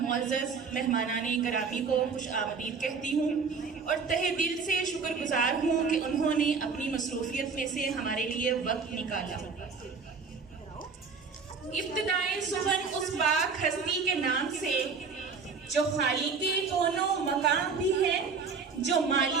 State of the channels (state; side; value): quieter; left; 5.2 dB